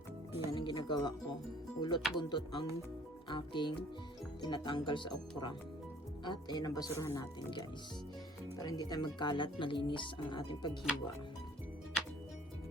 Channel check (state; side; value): normal; both; correlation 0.56